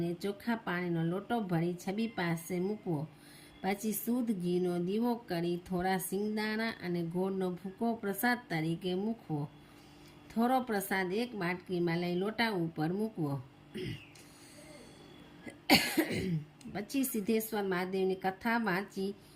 ચોખ્ખા પાણીનો લોટો ભરી છબી પાસે મૂકવો. પછી શુદ્ધ ઘીનો દીવો કરી થોડા સિંગદાણા અને ગોળનો ભૂકો પ્રસાદ તરીકે મૂકવો. થોડો પ્રસાદ એક બાટકીમાં લઈ લોટા ઉપર મૂકવો. પછી સિદ્ધેશ્વર મહાદેવની કથા વાંચી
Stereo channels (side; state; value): both; identical; correlation 1.00